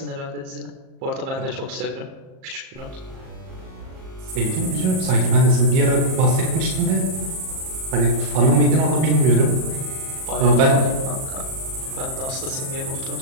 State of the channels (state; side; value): late; left; 38 ms